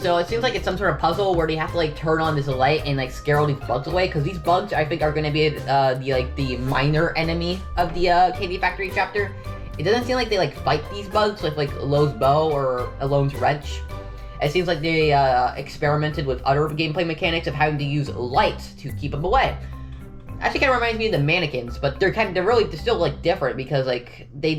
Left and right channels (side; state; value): both; identical; correlation 1.00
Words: it seems like it's some sort of puzzle where they have to like turn on this light and like scare all these bugs away, because these bugs I think are going to be the minor enemy of the Candy Factory chapter. It doesn't seem like they like fight these bugs with like Lowe's bow or Alone's wrench. It seems like they experimented with other gameplay mechanics of having to use light to keep them away. Actually, kind of reminds me of the mannequins, but they're still like different, because like